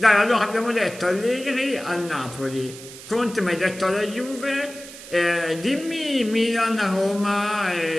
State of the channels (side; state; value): right; noise; hiss, 15 dB below the sound